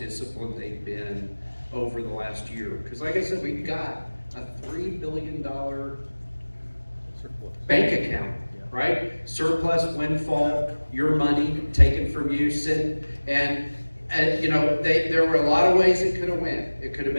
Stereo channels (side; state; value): both; inverted; correlation -1.00